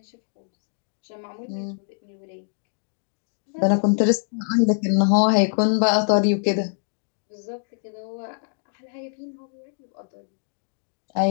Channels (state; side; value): silent; right; digital silence